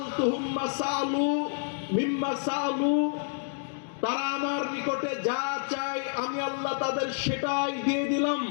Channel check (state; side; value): silent; right; digital silence